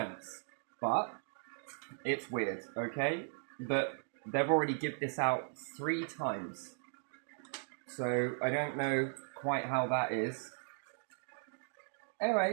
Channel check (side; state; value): left; silent; digital silence